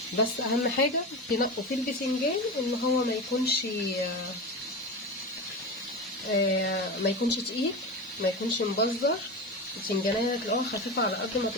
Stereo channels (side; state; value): both; normal; correlation 0.24